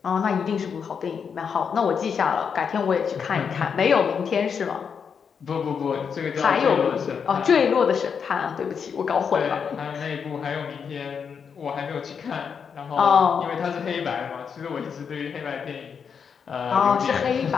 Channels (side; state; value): right; quieter; 6.6 dB